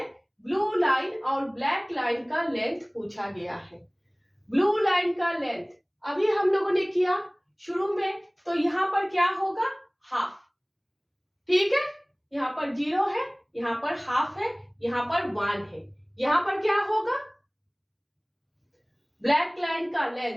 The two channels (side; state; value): both; identical; correlation 1.00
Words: blue line और black line का length पूछा गया है। ब्लू लाइन का लेंथ अभी हम लोगों ने किया शुरू में, तो यहाँ पर क्या होगा? हाफ। ठीक है, यहाँ पर 0 है, यहाँ पर हाफ है, यहाँ पर 1 है। यहाँ पर क्या होगा? ब्लैक लाइन का